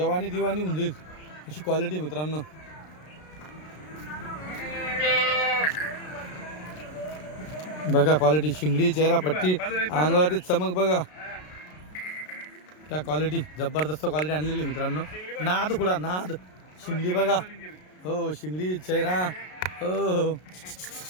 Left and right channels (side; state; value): right; late; 33 ms